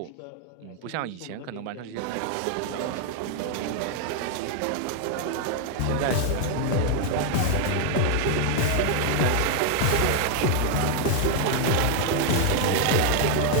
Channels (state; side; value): different; both; correlation 0.00